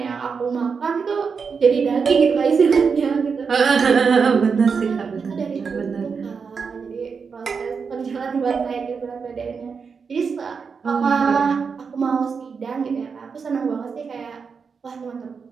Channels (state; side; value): quieter; left; 5.6 dB